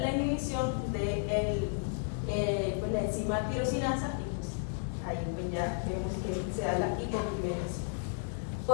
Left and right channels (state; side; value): silent; right; digital silence